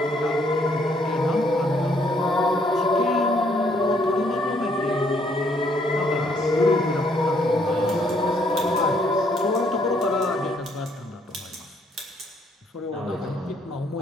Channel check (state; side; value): normal; both; correlation 0.68